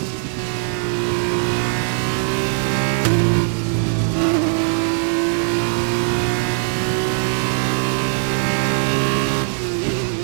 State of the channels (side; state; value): left; silent; digital silence